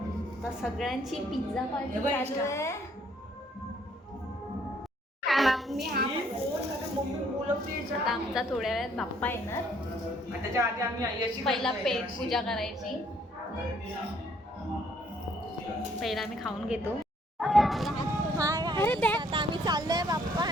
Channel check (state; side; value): normal; both; correlation 0.65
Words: तर सगळ्यांची पिझ्झा पार्टी चालू आहे. आता आमचा थोड्या वेळात बाप्पा येणार. पहिला पेट पूजा करायची. पहिला आम्ही खाऊन घेतो. आता आम्ही चाललोय बाप्पा